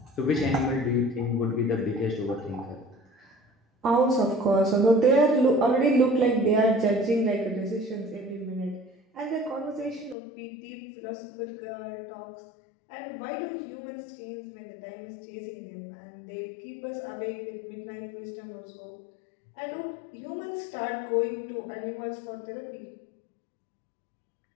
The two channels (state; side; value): drops out; right; at 10.2 s